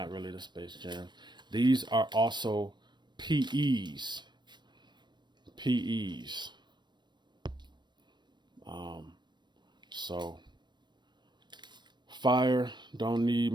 really the Space Jams. These are also PEs. So fire, don't need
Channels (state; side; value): late; left; 0.22 ms